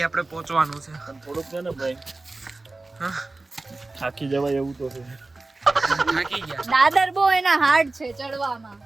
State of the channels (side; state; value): left; quieter; 3.2 dB